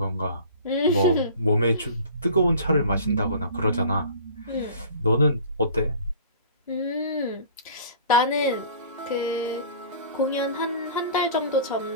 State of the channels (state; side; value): inverted; both; correlation -0.44